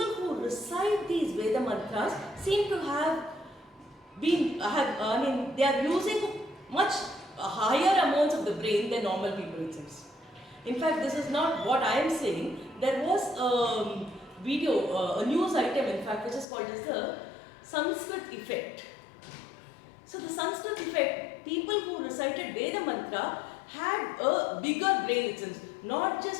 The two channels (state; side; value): drops out; right; at 16.4 s